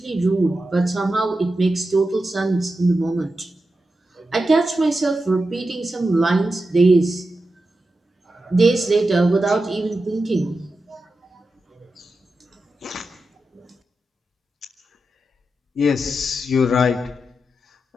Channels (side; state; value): both; normal; correlation 0.90